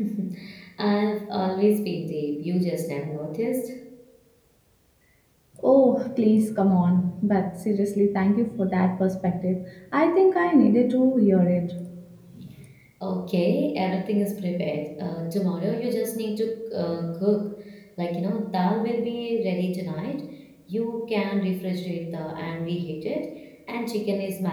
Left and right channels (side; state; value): both; identical; correlation 1.00